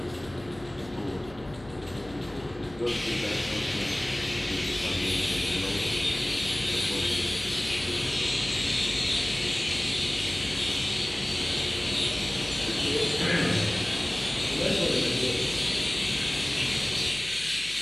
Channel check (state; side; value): noise; left; hum, 20 dB below the sound